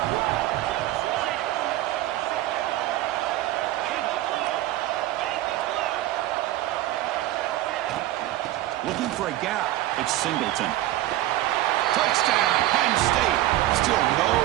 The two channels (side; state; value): left; quieter; 15.2 dB